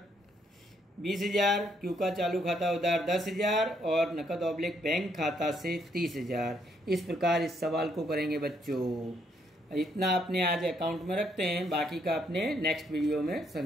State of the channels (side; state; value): both; normal; correlation 0.72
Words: 20,000, क्यू का चालू खाता उधार 10,000 और नकद ऑब्लिक बैंक खाता से 30,000। इस प्रकार इस सवाल को करेंगे बच्चों। इतना अपने आज अकाउंट में रखते हैं, बाकी का अपने नेक्स्ट वीडियो में